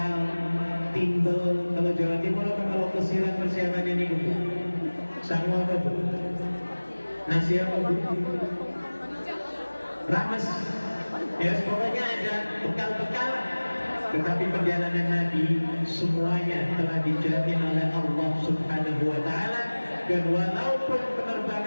timbel. Kalau Jawa Timur apa kalau kesiran persiapannya nih Bu? Sama apa Bu? Nasi apa Bu? Rames. Ya, pokoknya ada bekal-bekal. Tetapi perjalanan Nabi semuanya telah dijamin oleh Allah Subhanahu wa taala, dan walaupun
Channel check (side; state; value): both; inverted; correlation -1.00